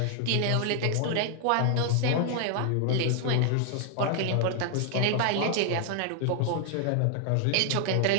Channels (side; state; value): both; different; correlation 0.00